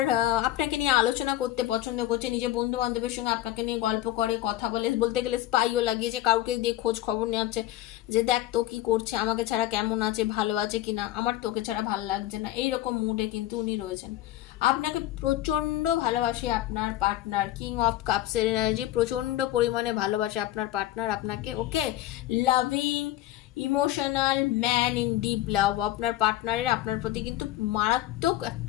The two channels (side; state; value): right; quieter; 14.6 dB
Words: আপনাকে নিয়ে আলোচনা করতে পছন্দ করছে, নিজের বন্ধু বান্ধবের সঙ্গে আপনাকে নিয়ে গল্প করে, কথা বলে, বলতে গেলে স্পাইও লাগিয়েছে, কাউকে দিয়ে খোঁজ খবর নেওয়াচ্ছে যে দেখ তো কি করছে, আমাকে ছাড়া কেমন আছে, ভালো আছে কিনা, আমার তোকে ছাড়া ভালো লাগছে না, এইরকম মুডে কিন্তু উনি রয়েছেন। আপনাকে প্রচন্ড ভালোবাসে আপনার পার্টনার, কিং অফ কাপসের এনার্জি, প্রচন্ড পরিমাণে ভালোবাসে আপনার পার্টনার আপনাকে। Okay, loving, emotional man in deep love, আপনার পার্টনারের আপনার প্রতি কিন্তু মারাত্মক